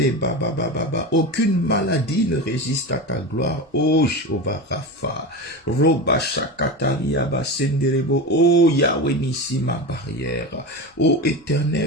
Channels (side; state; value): both; normal; correlation 0.24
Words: Aucune maladie ne résiste à ta gloire. Oh Jehovah Rapha, Roba Shakataria Basenderebo, oh Yahweh Nissi ma barrière, oh